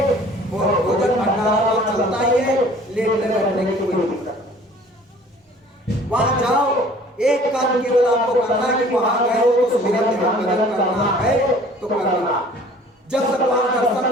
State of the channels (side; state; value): both; normal; correlation 0.51